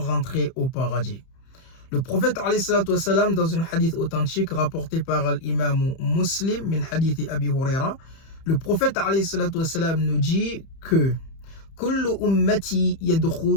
au paradis. Le prophète alayhi salatu wassalam, dans un hadith authentique rapporté par l'imam Muslim, min hadith Abi Huraira, le prophète alayhi salatu wassalam nous dit que Kullu ummati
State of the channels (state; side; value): late; right; 31 ms